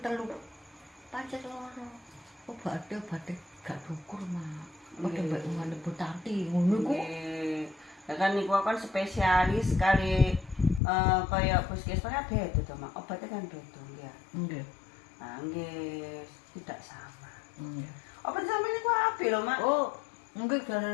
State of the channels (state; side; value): drops out; right; at 10.8 s